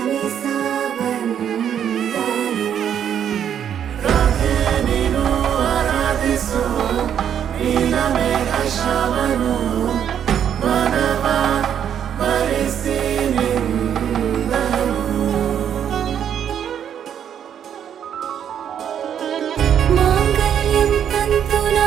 ಬಂದನು, ರಾಧೆ ನೀನು ಆರಾಧಿಸೋ ನೀಲಮೇಘ ಶ್ರಾವಣೋ. ವನವ ವರಿಸಿ ನಿಂದನು, ಮಾಂಗಲ್ಯಂ ತಂತು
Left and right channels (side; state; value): left; quieter; 9.1 dB